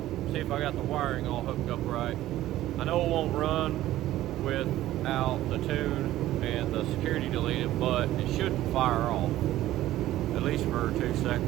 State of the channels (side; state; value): left; quieter; 14.6 dB